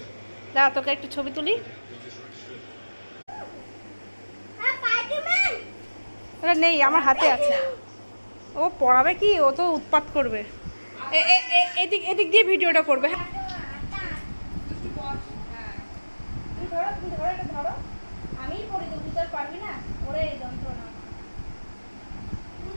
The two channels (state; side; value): inverted; both; correlation -1.00